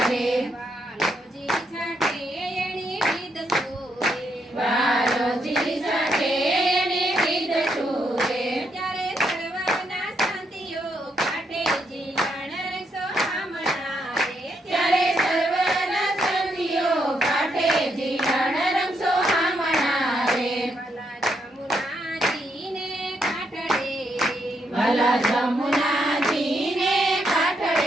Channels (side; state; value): both; normal; correlation 0.77